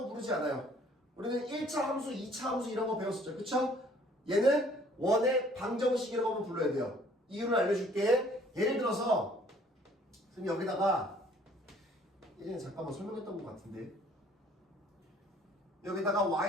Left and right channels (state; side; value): normal; both; correlation 0.58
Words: 부르지 않아요. 우리는 1차 함수, 2차 함수 이런 거 배웠었죠. 그쵸? 얘는 원의 방정식이라고 하면 불러야 돼요. 이유를 알려줄게. 예를 들어서 선생님 여기다가 예전에 잠깐만 설명했던 것 같은데 여기다가